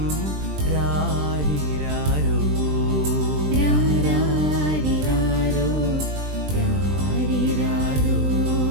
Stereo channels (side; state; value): left; late; 20 ms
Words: രാരിരാരോ രാരിരാരോ രാരിരാരോ.